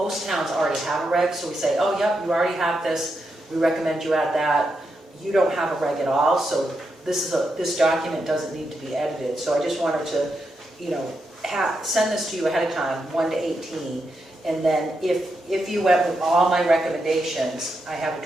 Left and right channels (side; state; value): both; normal; correlation 0.84